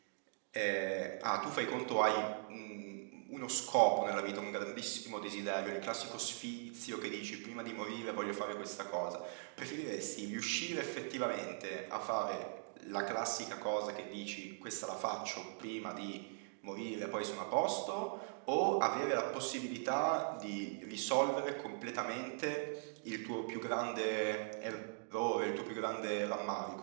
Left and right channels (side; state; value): left; silent; digital silence